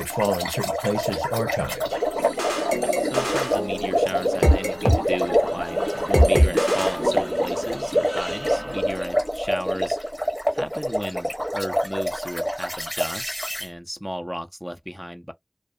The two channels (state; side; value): identical; both; correlation 1.00